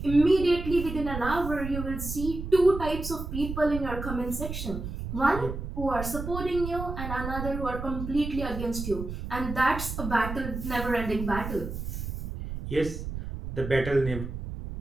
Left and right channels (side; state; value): right; noise; rumble, 6 dB below the sound